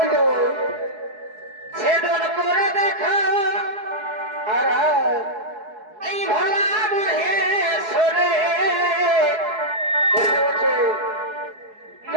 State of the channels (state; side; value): late; left; 4.7 ms